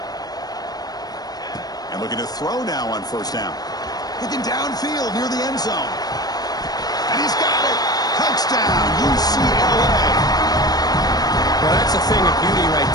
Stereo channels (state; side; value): late; right; 0.19 ms